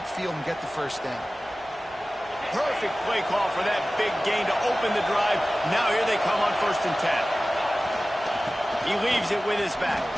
and get the first down. Perfect play call for that big gain to open the drive. Now here they come on 1st and 10. He leaves it with his back.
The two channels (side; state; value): both; normal; correlation 0.97